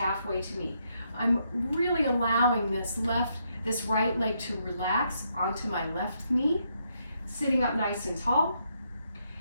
to me. I'm really allowing this right leg to relax onto my left knee, sitting up nice and tall.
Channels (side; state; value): both; inverted; correlation -0.77